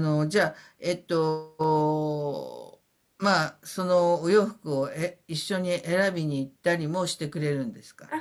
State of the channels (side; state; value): both; identical; correlation 1.00